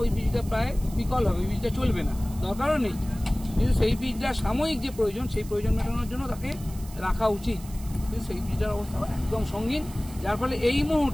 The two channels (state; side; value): noise; right; hiss, 19 dB below the sound